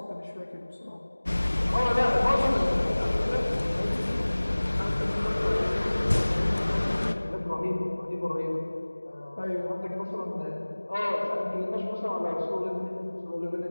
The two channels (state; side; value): inverted; both; correlation -1.00